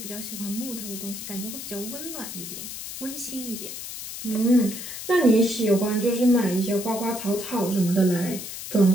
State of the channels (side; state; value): left; noise; hiss, 9 dB below the sound